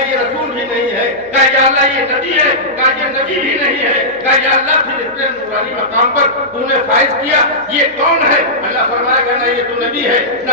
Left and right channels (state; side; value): noise; right; hum, 29 dB below the sound